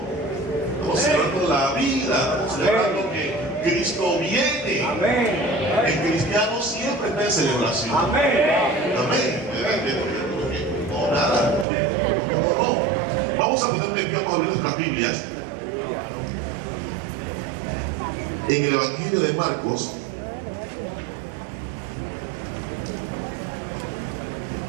estamos celebrando la vida, estamos celebrando que Cristo viene. Amén. El cristiano siempre está en celebración. Amén. Amén. No, nada. No. Vamos a ponerle en pie, vamos a abrir nuestras Biblias. En el Evangelio de Marcos,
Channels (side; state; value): left; drops out; at 11.7 s